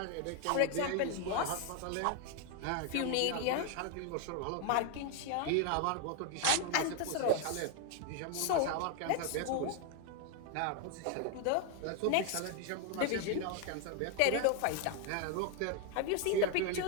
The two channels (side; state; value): both; different; correlation 0.01